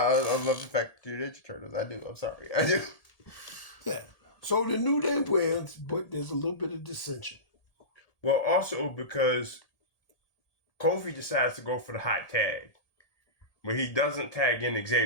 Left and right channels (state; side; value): late; right; 1.8 ms